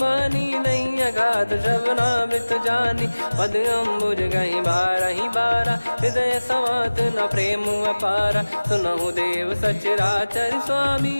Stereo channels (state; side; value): inverted; both; correlation -1.00